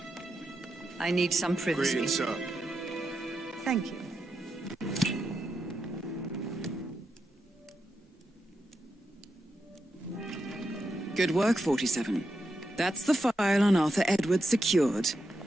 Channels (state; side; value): normal; both; correlation 0.86